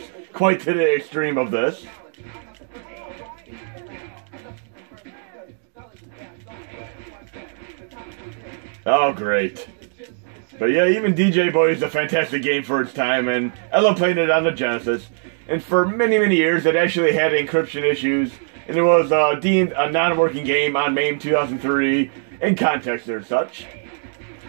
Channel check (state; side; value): silent; left; 62 dB below the other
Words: quite to the extreme of this. Oh, great. But yeah, even DJ Boy is a fantastic game for its time, and I love playing it on the Genesis. And for many, many years, it actually had encryption issues, and it was deemed a non-working game on MAME 2003 in context or such.